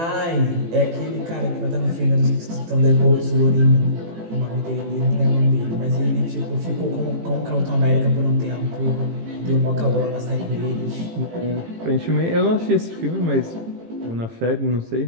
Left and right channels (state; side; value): late; left; 18 ms